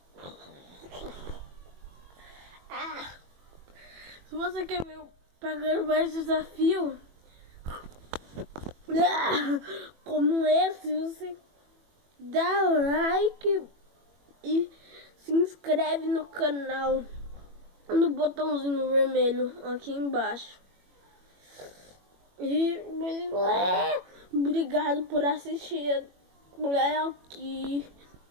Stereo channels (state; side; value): late; left; 21 ms